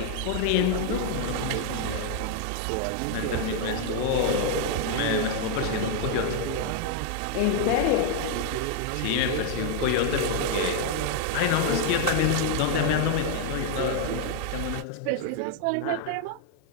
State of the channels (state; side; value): different; both; correlation 0.00